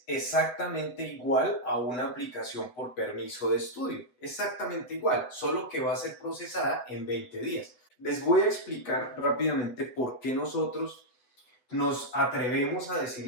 exactamente igual a una aplicación por permiso de estudio, exactamente igual, solo que va a ser procesada en 20 días. Les voy a explicar rápidamente por qué nosotros nos atrevemos a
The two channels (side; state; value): right; late; 8.0 ms